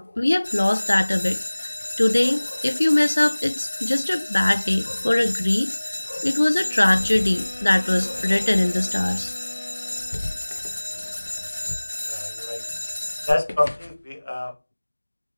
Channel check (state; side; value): inverted; both; correlation -1.00